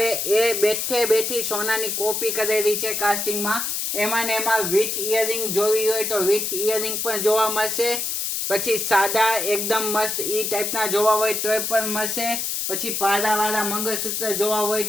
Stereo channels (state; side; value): noise; left; hiss, 1 dB below the sound